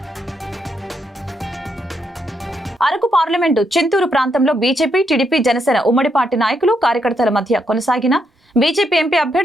అరకు పార్లమెంటు చింతూరు ప్రాంతంలో బీజేపీ, టీడీపీ, జనసేన ఉమ్మడి పార్టీ నాయకులు, కార్యకర్తల మధ్య కొనసాగిన బీజేపీ ఎంపీ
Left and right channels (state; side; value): normal; both; correlation 0.78